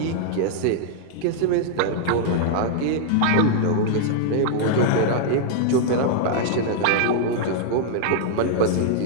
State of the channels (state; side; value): different; both; correlation -0.01